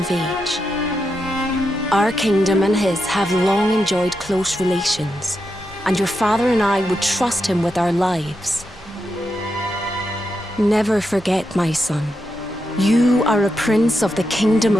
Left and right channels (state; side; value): normal; both; correlation 0.85